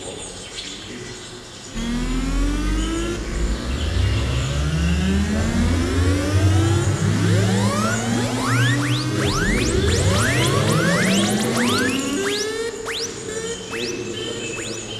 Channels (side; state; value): both; identical; correlation 1.00